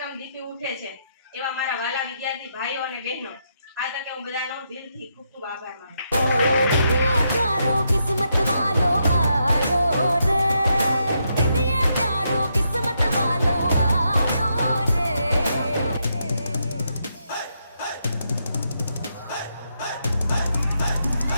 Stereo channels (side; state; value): both; inverted; correlation -0.80